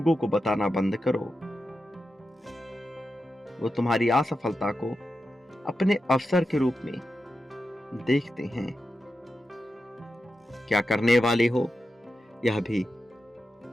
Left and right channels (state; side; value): normal; both; correlation 0.90